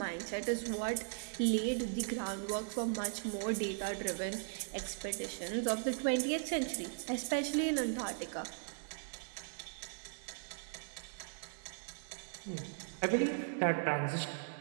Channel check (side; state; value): left; silent; digital silence